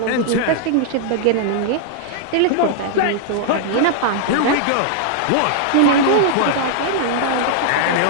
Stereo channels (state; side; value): different; both; correlation -0.01